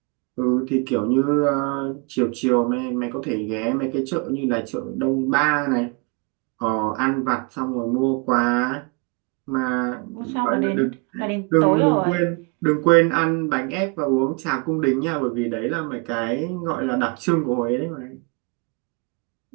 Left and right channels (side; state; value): left; quieter; 31.2 dB